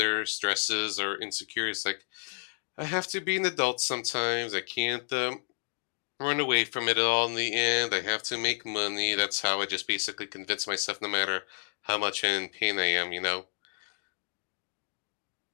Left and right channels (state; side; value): silent; right; 57 dB below the other